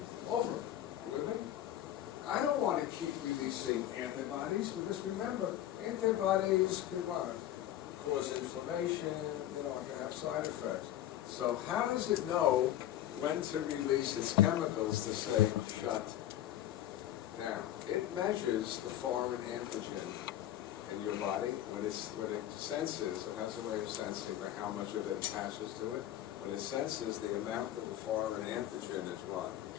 over. With it? I don't want to keep releasing antibodies because remember, antibodies can cause inflammation, it can have side effects. So how does it know when to release its chemicals to say shut down? It measures the foreign antigen in your body. When it senses, it has a way of sensing how much of it attaches to it. When it senses the amount of the foreign antigen is what?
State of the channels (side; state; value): right; quieter; 12.5 dB